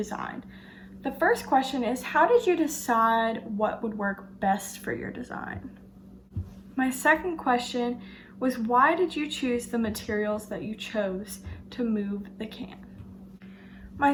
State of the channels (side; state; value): both; identical; correlation 1.00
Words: The first question is, how did you decide what would work best for your design? My second question was, why did you choose the materials that you chose to move the can? My